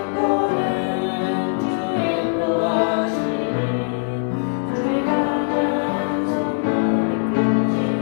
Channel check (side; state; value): right; silent; digital silence